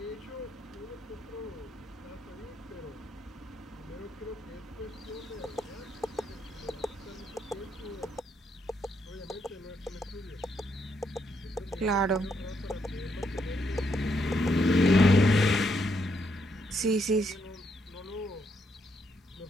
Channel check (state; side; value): normal; both; correlation 0.77